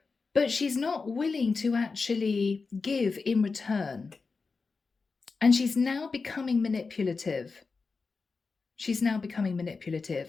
But she's not willing to actually give in return. And she's now becoming manipulative. She's now becoming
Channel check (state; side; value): quieter; right; 4.4 dB